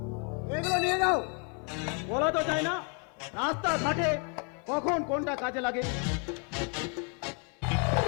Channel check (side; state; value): right; quieter; 38.1 dB